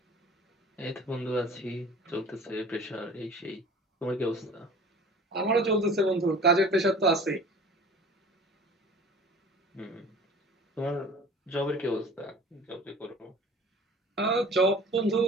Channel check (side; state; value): both; normal; correlation 0.43